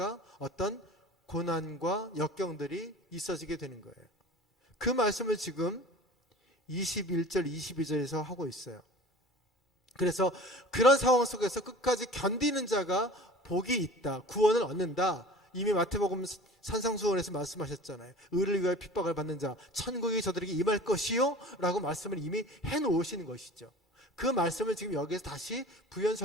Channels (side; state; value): both; normal; correlation 0.41